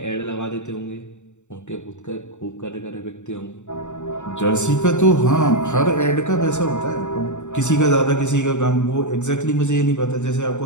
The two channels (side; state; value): right; late; 0.84 ms